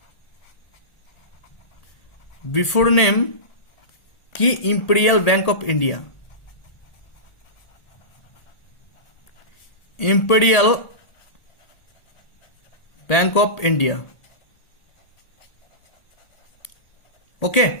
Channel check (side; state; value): right; late; 1.8 ms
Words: বিফোর নেম কি, imperial bank of India. Imperial bank of India. Okay,